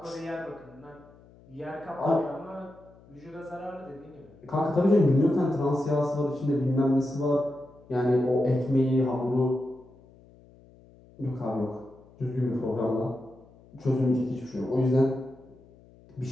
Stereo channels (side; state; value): left; noise; hum, 25 dB below the sound